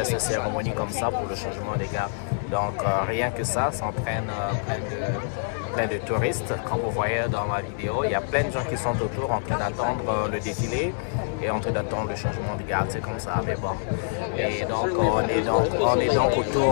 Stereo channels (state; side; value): silent; right; 59 dB below the other